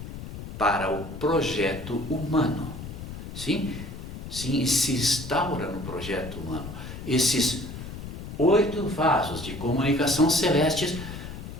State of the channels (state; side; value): noise; left; rumble, 10 dB below the sound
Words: para o projeto humano. Sim, se instaura no projeto humano. Esses 8 vasos de comunicação celestes